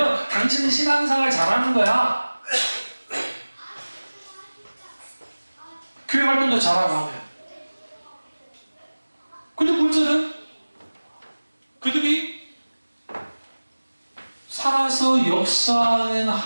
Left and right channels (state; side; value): inverted; both; correlation -1.00